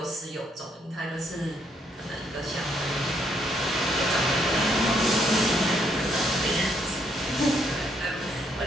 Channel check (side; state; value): both; normal; correlation 0.72